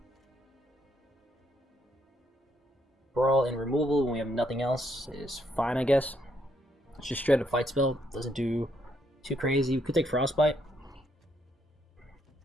Brawl and removal when we have nothing else is fine, I guess. It's just straight up fight spell. Doesn't do too crazy. We could take Frostbite.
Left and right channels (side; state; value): both; normal; correlation 0.74